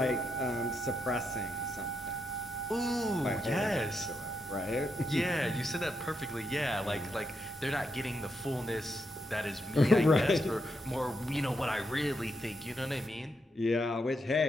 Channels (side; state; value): both; normal; correlation 0.82